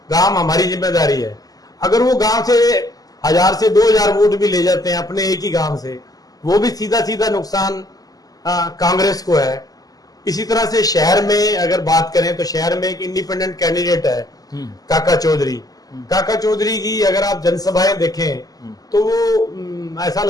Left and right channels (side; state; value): right; late; 0.18 ms